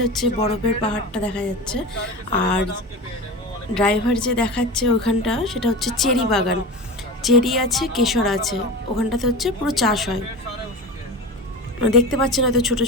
হচ্ছে বরফের পাহাড়টা দেখা যাচ্ছে। আর ড্রাইভার যে দেখাচ্ছে ওখানটা, সেটা হচ্ছে চেরি বাগান, চেরি আছে কেশর আছে, ওখানটাতে হচ্ছে পুরো চাষ হয়। দেখতে পাচ্ছেন হয়তো ছোট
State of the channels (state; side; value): normal; both; correlation 0.29